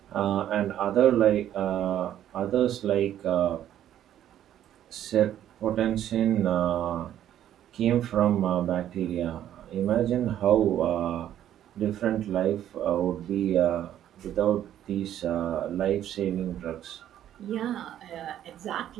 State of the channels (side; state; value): left; quieter; 11.3 dB